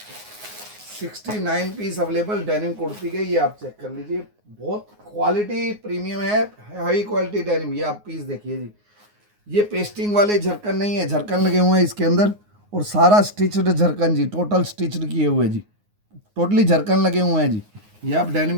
69 पीस अवेलेबल डेनिम कुर्ती के। ये आप चेक कर लीजिए, बहुत क्वालिटी प्रीमियम है, हाई क्वालिटी डेनिम। ये आप पीस देखिए जी। ये पेस्टिंग वाले झरकन नहीं है, झरकन लगे हुए हैं इसके अंदर, और सारा स्टिच्ड झरकन जी, टोटल स्टिच्ड किए हुए जी, टोटली झरकन लगे हुए हैं जी। ये आप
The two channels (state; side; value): late; left; 9.6 ms